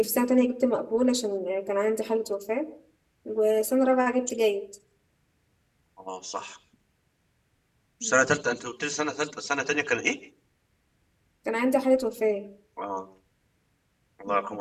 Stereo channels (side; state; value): both; identical; correlation 1.00